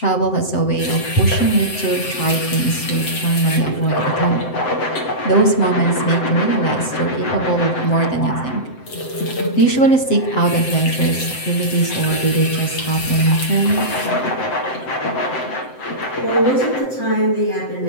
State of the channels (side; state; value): right; late; 7.8 ms